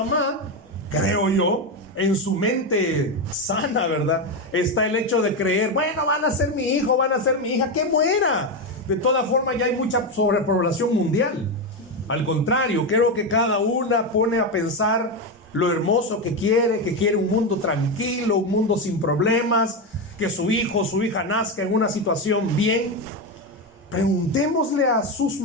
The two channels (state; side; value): normal; both; correlation 0.11